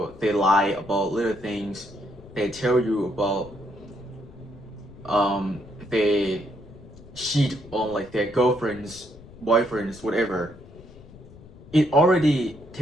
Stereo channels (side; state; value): left; noise; rumble, 20 dB below the sound